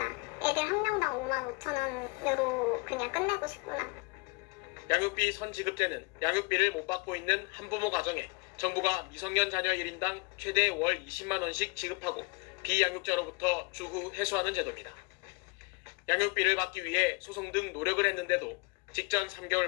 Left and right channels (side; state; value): right; quieter; 28.4 dB